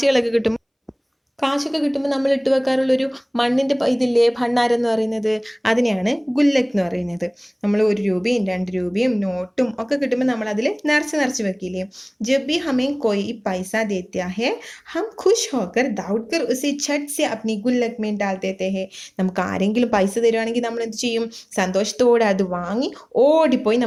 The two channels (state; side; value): identical; both; correlation 1.00